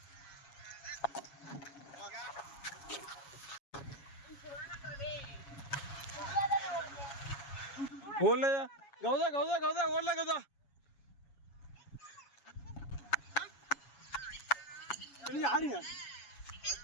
ஓடலையா கௌதா ஓடல கௌதா. ஆடுங்க.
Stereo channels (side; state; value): right; late; 7.2 ms